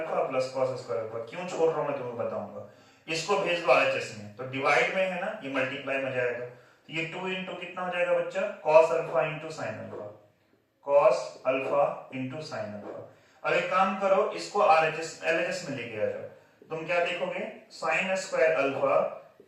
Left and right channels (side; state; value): both; identical; correlation 1.00